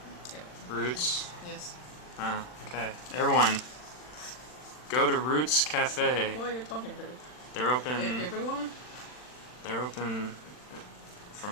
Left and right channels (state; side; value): late; right; 40 ms